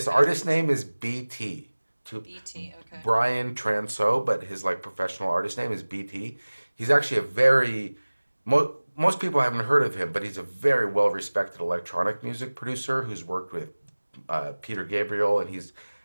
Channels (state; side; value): inverted; both; correlation -1.00